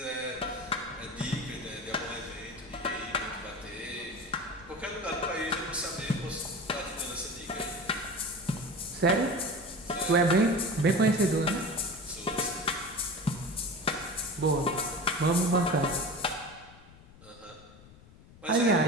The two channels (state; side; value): noise; left; rumble, 22 dB below the sound